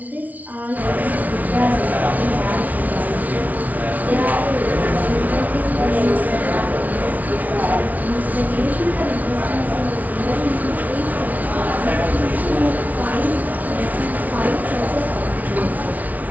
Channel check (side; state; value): left; late; 0.074 ms